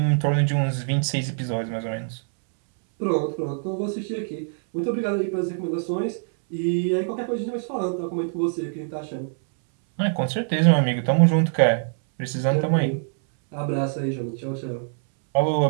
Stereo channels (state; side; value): silent; left; 63 dB below the other